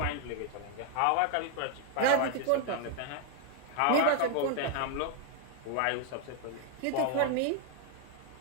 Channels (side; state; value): both; different; correlation 0.00